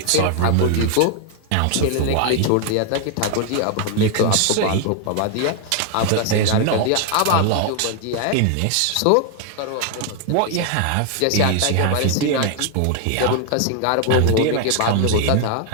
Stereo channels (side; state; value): both; different; correlation 0.01